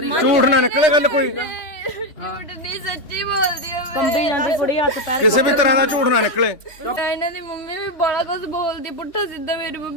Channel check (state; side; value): late; right; 3.3 ms